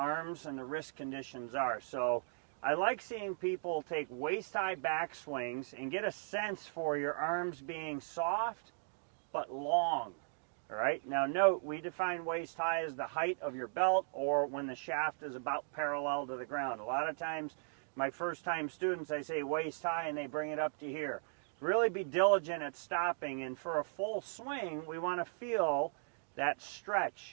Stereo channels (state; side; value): silent; left; digital silence